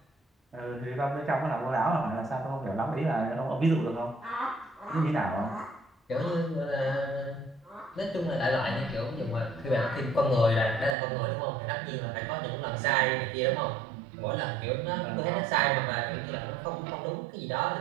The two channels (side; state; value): left; drops out; at 11.0 s